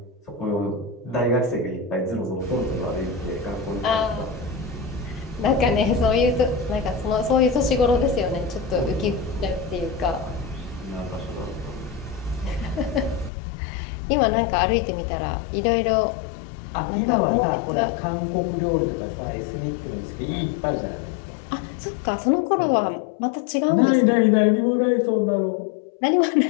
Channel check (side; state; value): right; drops out; at 13.3 s